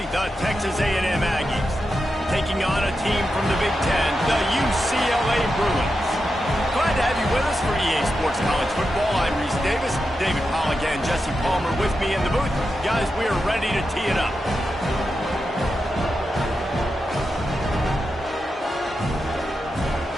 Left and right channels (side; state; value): both; normal; correlation 0.88